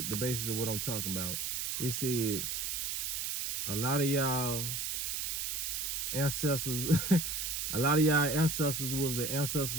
the basis of what I'm talking about. It said, a lot of y'all ancestors, was the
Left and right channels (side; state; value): right; noise; hiss, 1 dB below the sound